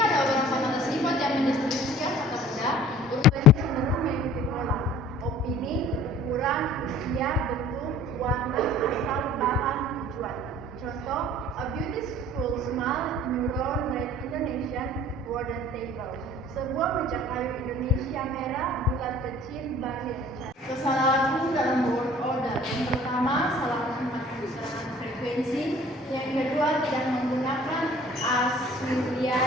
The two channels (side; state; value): both; normal; correlation 0.49